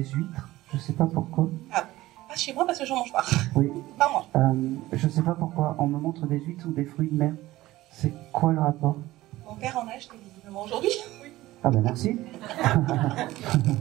huîtres, je sais pas pourquoi. Ah, pas chez moi parce que j'en mange pas. Oui. Pas moi. Je sais pas pourquoi on me montre des huîtres ou des fruits de mer. C'est quoi le rapport? Mon père en a acheté visiblement aujourd'hui. Oui. Ah ben merci.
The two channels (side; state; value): left; quieter; 17.0 dB